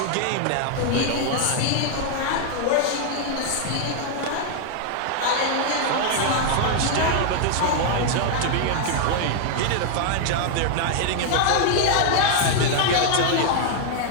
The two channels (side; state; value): both; different; correlation 0.00